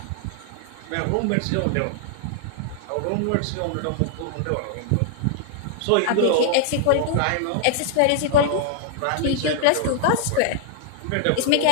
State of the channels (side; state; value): both; different; correlation -0.01